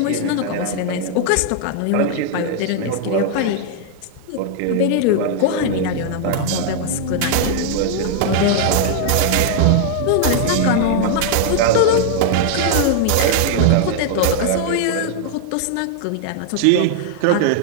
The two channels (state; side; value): different; both; correlation 0.00